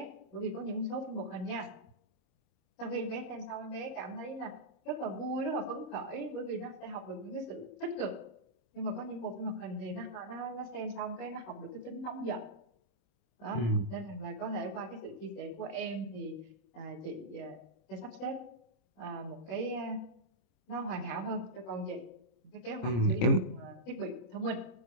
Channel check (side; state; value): right; late; 26 ms